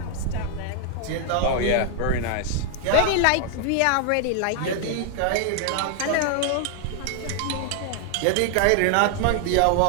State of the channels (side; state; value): both; different; correlation 0.00